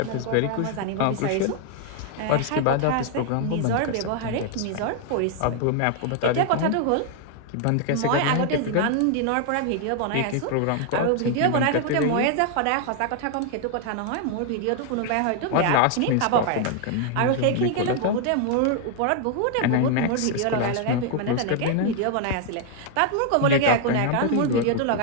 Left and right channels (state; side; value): different; both; correlation 0.00